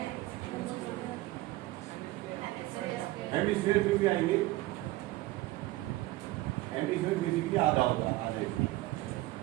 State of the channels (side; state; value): left; quieter; 18.1 dB